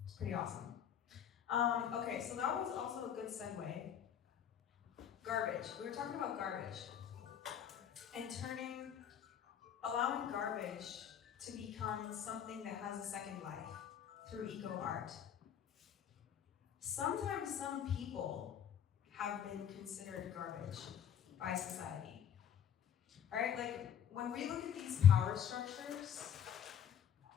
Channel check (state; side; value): quieter; right; 8.8 dB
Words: It's pretty awesome. Okay, so that was also a good segue. Garbage. We were talking about garbage. And allowing garbage to become something that has a second life through eco-art. Sometimes some people have been considered garbage by society. All right, like when we look at these power structures,